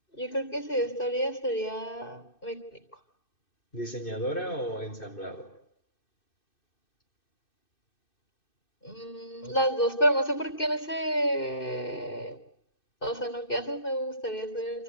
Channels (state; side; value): late; right; 2.6 ms